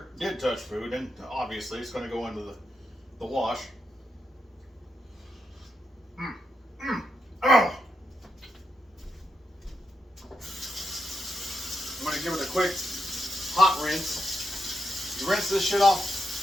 did touch food, and obviously it's going to go into the wash. Oh. I'm going to give it a quick hot rinse. You rinse this shit off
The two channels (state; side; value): normal; both; correlation 0.84